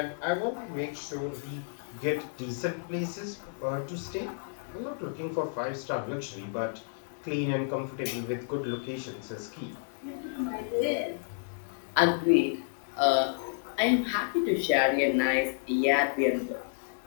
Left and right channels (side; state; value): right; silent; digital silence